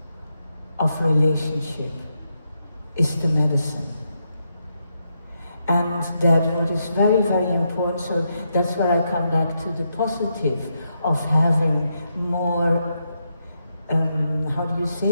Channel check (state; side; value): inverted; both; correlation -0.82